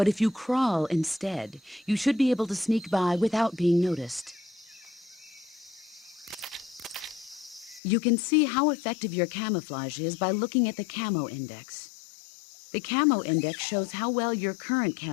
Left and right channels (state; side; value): drops out; right; at 7.8 s